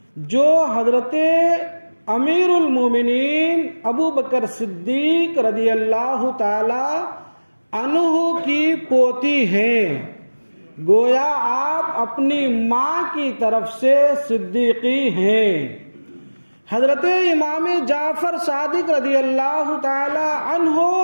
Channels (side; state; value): both; inverted; correlation -1.00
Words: جو حضرت امیر المومنین ابو بکر صدیق رضی اللہ تعالی عنہ کی پوتی ہیں۔ گویا آپ اپنی ماں کی طرف سے صدیقی ہیں۔ حضرت امام جعفر صادق رضی اللہ تعالی عنہ